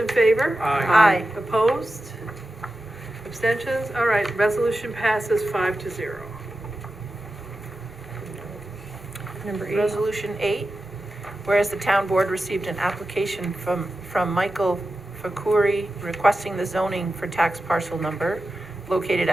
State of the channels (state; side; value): normal; both; correlation 0.92